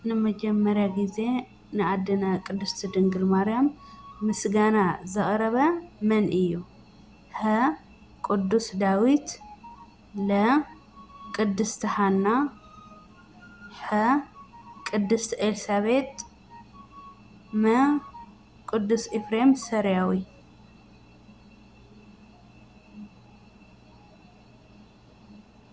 ንመጀመርያ ግዜ ንኣዴና ቅድስት ድንግል ማርያም ምስጋና ዘቕረበ መን እዩ? ሀ ቅዱስ ዳዊት፣ ለ ቅድስቲ ሃና፣ ሐ ቅድስት ኤልሳቤጥ፣ መ ቅዱስ ኤፍሬም ሰሪያዊ።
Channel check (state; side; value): identical; both; correlation 1.00